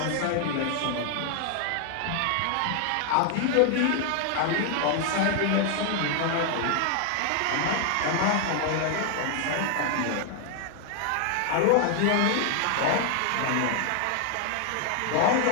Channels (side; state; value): both; different; correlation 0.00